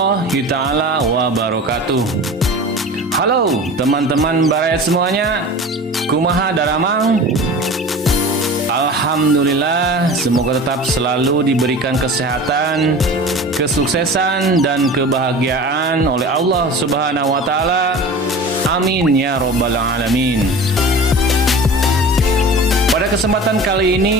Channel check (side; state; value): both; normal; correlation 0.36